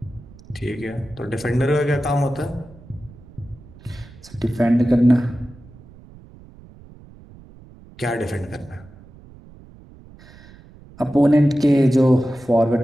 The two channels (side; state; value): right; noise; rumble, 22 dB below the sound